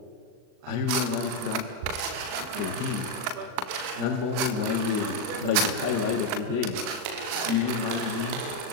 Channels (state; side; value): late; left; 39 ms